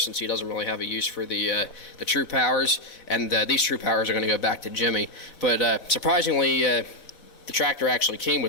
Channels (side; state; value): right; late; 4.0 ms